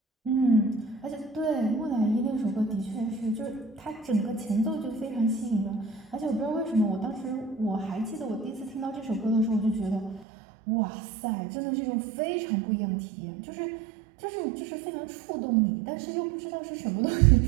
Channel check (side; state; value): left; drops out; at 10.2 s